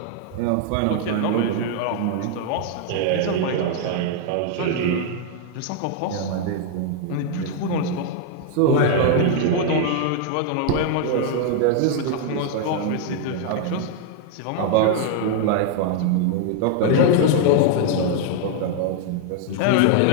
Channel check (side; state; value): both; different; correlation 0.00